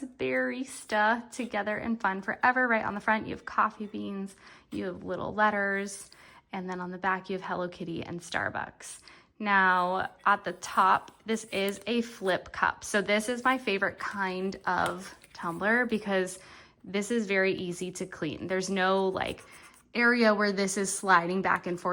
barista together in fun forever. Right on the front, you have coffee beans, you have little letters, and then on the back, you have Hello Kitty and Starbucks. Now, at the top, this is a flip cup. So this is my favorite kind of tumbler because this is very easy to clean. There's no like area where this is sliding back and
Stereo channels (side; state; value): both; identical; correlation 1.00